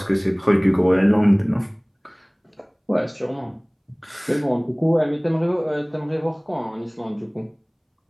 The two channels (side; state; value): both; identical; correlation 1.00